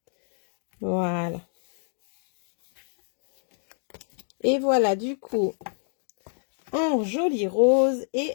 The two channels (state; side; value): silent; right; digital silence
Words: Voilà. Et voilà, du coup, en joli rose et